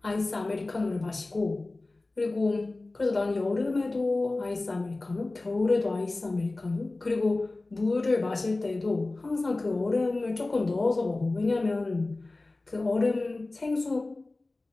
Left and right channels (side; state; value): right; quieter; 3.1 dB